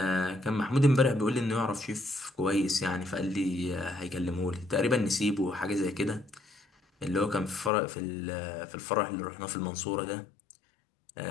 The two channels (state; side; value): drops out; right; at 7.7 s